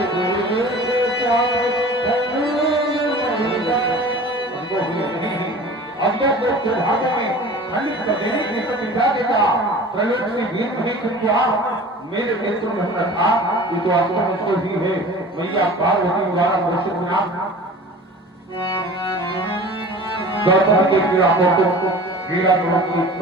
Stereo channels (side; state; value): both; normal; correlation 0.41